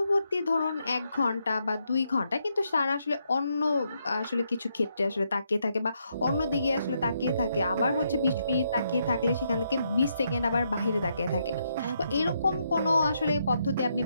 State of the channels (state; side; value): inverted; both; correlation -0.78